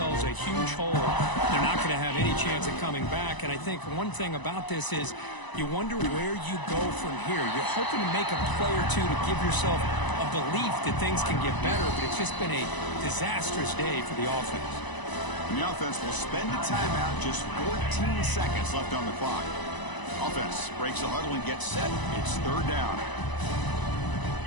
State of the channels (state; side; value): late; right; 1.0 ms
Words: a huge hole. They're not going to have any chance of coming back. And I think one thing about this is you wonder where you go from here. You're hoping to make a play or two to give yourself a belief that things can get better, but it's just been a disastrous day for the offense. And the offense will spend a timeout, just 14 seconds left on the clock. Offense breaks the huddle and gets set. It's 3rd down.